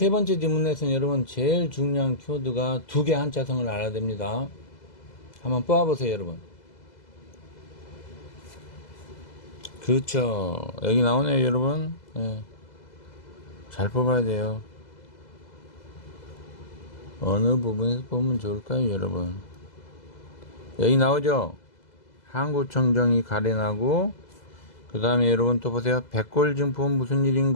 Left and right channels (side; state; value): right; late; 2.0 ms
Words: 번째 질문에서는 여러분 제일 중요한 키워드가 두 개 한자성을 알아야 됩니다. 한번 뽑아보세요, 여러분. 그렇죠. 여기 나오네요, 여러분. 예. 잘 뽑아야 돼요. 어느 부분에서 뽑으면 좋을까요, 여러분? 여기 나오죠? 한국청정이 가래나고, 그 다음에 여러분 또 보세요. 백골증포는 무슨